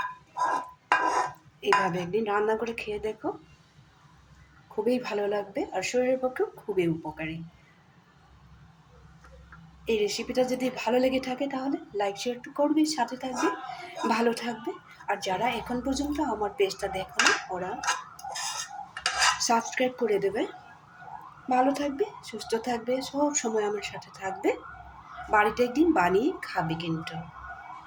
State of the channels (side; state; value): both; identical; correlation 1.00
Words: এইভাবে একদিন রান্না করে খেয়ে দেখো, খুবই ভালো লাগবে আর শরীরের পক্ষেও খুবই উপকারী। এই রেসিপিটা যদি ভালো লেগে থাকে তাহলে লাইক শেয়ার করবে, সাথে থাকবে, ভালো থাকবে। আর যারা এখন পর্যন্ত আমার পেজটা দেখোনি ওরা সাবস্ক্রাইব করে দেবে। ভালো থাকবে, সুস্থ থাকবে, সব সময় আমার সাথে থাকবে। বাড়িতে একদিন বানিয়ে খাবে কিন্তু।